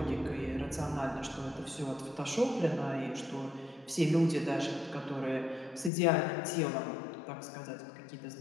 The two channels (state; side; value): drops out; right; at 5.9 s